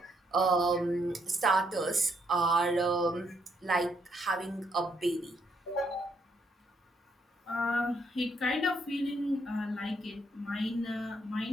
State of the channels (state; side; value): normal; both; correlation 0.73